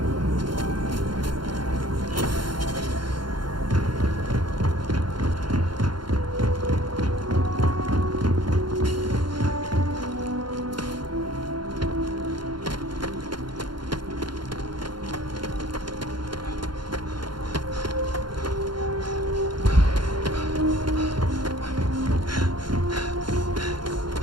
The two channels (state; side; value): late; left; 0.72 ms